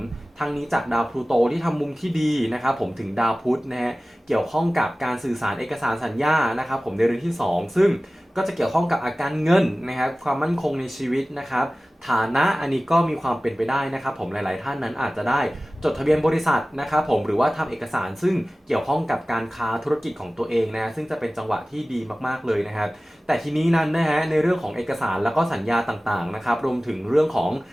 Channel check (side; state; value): both; normal; correlation 0.97